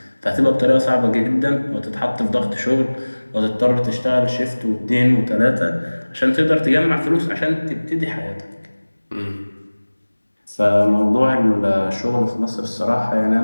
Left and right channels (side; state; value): both; inverted; correlation -1.00